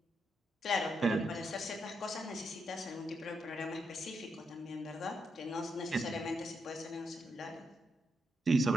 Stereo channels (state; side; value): normal; both; correlation 0.82